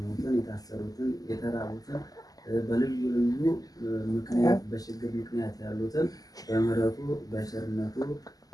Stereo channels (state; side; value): late; right; 0.17 ms